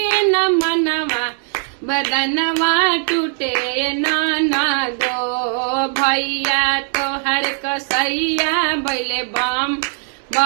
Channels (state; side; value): silent; left; 59 dB below the other